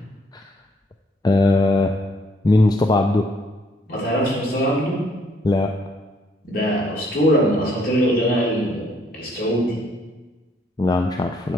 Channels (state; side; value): normal; both; correlation 0.67